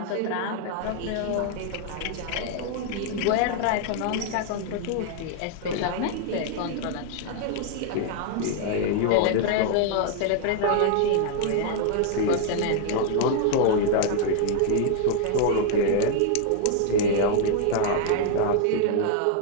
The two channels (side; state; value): both; different; correlation 0.00